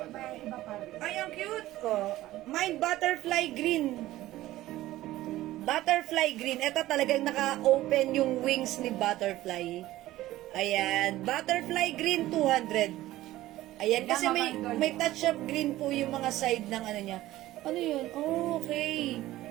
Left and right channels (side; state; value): left; quieter; 15.8 dB